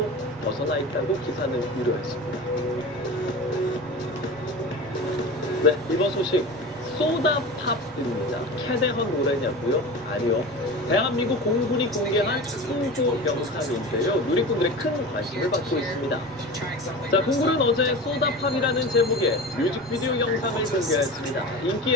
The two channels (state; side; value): noise; right; rumble, 26 dB below the sound